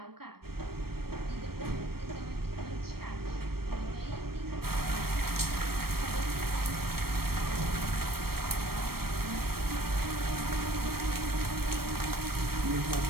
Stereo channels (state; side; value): late; left; 0.94 ms